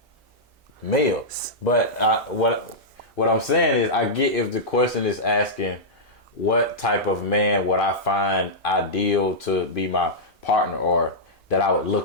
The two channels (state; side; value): normal; both; correlation -0.10